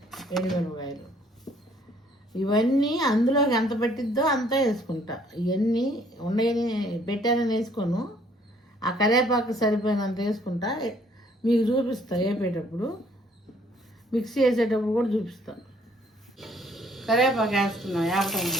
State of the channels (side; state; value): both; normal; correlation 0.62